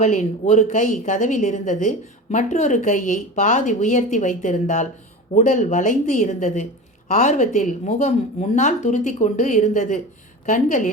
ஒரு கை கதவில் இருந்தது. மற்றொரு கையை பாதி உயர்த்தி வைத்திருந்தாள். உடல் வளைந்து இருந்தது. ஆர்வத்தில் முகம் முன்னால் துருத்தி கொண்டு இருந்தது.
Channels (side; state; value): both; normal; correlation 0.30